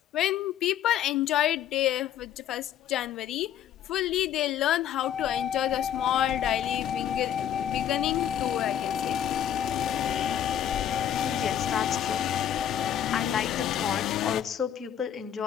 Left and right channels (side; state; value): right; quieter; 10.2 dB